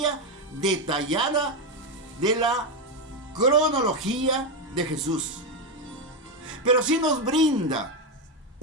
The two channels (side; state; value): both; normal; correlation 0.09